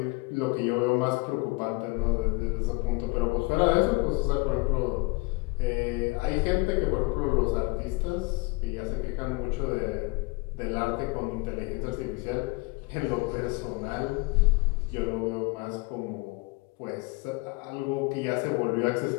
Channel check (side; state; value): right; quieter; 25.8 dB